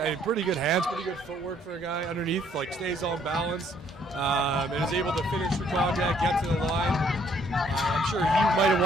pretty good hands, pretty good footwork for a guy underneath, like stays on balance, and is able to finish through contact, get to the line. I'm sure he might have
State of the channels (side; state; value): both; normal; correlation 0.65